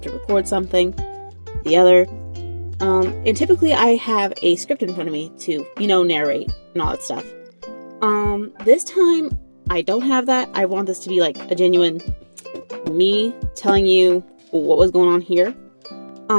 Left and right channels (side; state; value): both; inverted; correlation -1.00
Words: to record something, the other, and typically I have a script in front of me to, narrate and all that stuff. This time I don't have that. I want this to be like a genuine me telling you what was going on here.